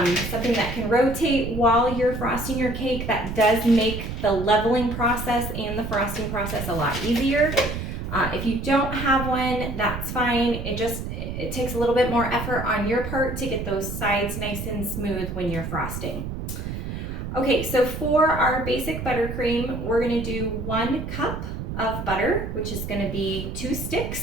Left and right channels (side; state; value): right; noise; rumble, 6 dB below the sound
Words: that can rotate while you're frosting your cake, that does make the leveling process and the frosting process a lot easier. If you don't have one, that's fine. It takes a little bit more effort on your part to get those sides nice and smooth when you're frosting. Okay, so for our basic buttercream, we're gonna do 1 cup of butter, which is going to be 2